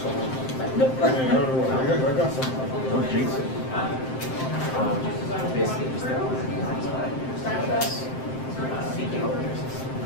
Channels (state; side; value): late; right; 7.7 ms